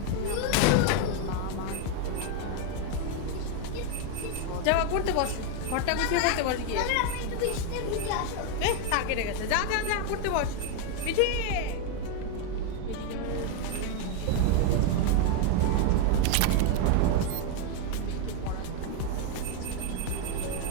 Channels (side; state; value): both; different; correlation 0.01